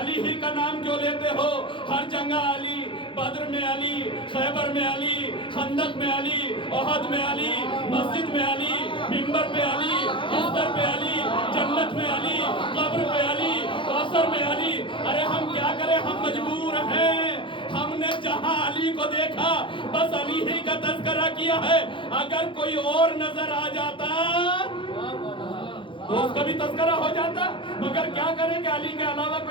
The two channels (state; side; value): late; right; 0.25 ms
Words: ہی کا نام کیوں لیتے ہو، ہر جنگہ علی، بدر میں علی، خیبر میں علی، خندق میں علی، احد میں علی، مسجد میں علی، منبر پہ علی، بستر پہ علی، جنت میں علی، قبر پہ علی، کوثر میں علی۔ ارے ہم کیا کریں، ہم مجبور ہیں، ہم نے جہاں علی کو دیکھا بس علی ہی کا تذکرہ کیا ہے، اگر کوئی اور نظر آ جاتا تو اس کا بھی تذکرہ ہو جاتا، مگر کیا کریں کہ علی کے علاوہ